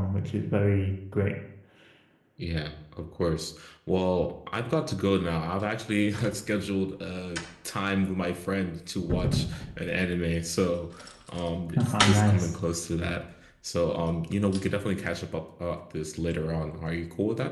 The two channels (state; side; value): identical; both; correlation 1.00